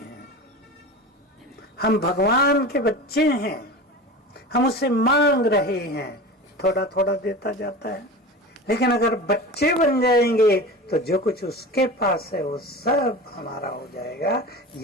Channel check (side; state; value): both; normal; correlation 0.32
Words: हम भगवान के बच्चे हैं, हम उससे मांग रहे हैं, थोड़ा थोड़ा देता जाता है। लेकिन अगर बच्चे बन जाएंगे तो जो कुछ उसके पास है वो सब हमारा हो जाएगा।